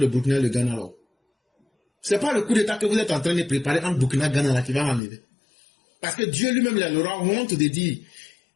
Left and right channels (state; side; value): drops out; right; at 5.0 s